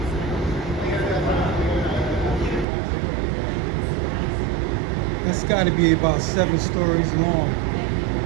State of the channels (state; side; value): drops out; left; at 2.7 s